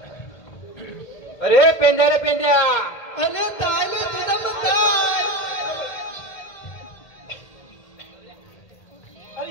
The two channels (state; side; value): late; right; 1.8 ms